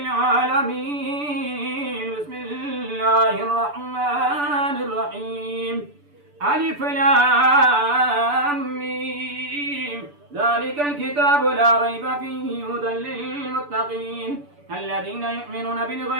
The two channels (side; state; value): left; late; 6.9 ms